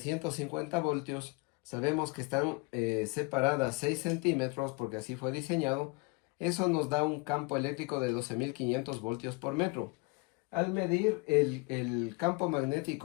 voltios, sabemos que están separadas 6 centímetros porque así fue diseñado. Eso nos da un campo eléctrico de 12.500 voltios por metro. Al medir el campo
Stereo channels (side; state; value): right; quieter; 27.7 dB